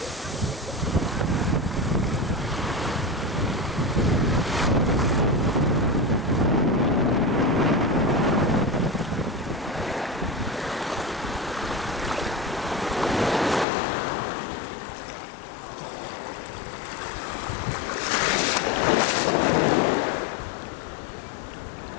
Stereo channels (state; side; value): drops out; right; at 13.7 s